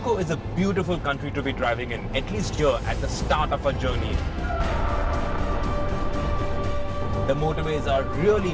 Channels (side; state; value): both; identical; correlation 1.00